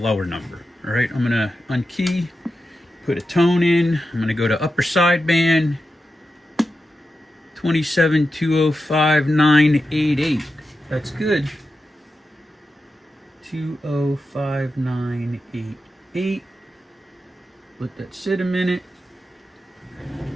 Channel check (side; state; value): both; normal; correlation 0.90